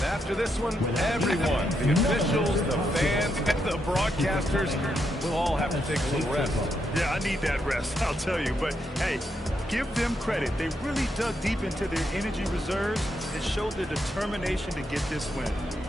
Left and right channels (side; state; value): both; normal; correlation 0.80